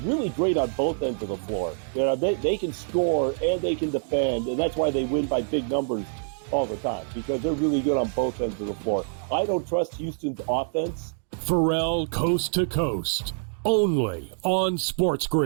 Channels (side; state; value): left; silent; digital silence